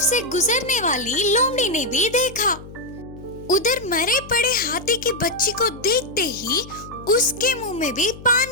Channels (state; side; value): noise; left; hum, 16 dB below the sound